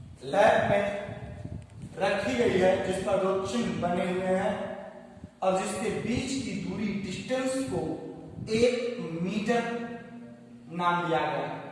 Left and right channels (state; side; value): identical; both; correlation 1.00